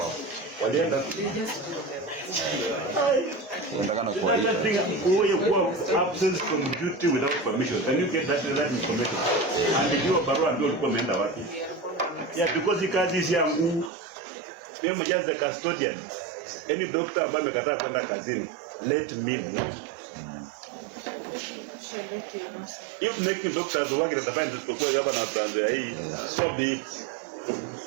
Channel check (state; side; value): drops out; left; at 13.9 s